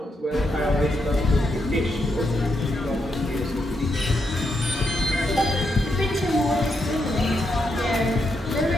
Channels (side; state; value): both; normal; correlation 0.81